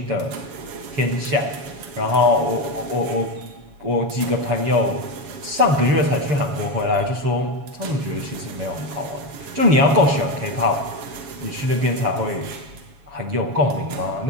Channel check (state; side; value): late; left; 7.2 ms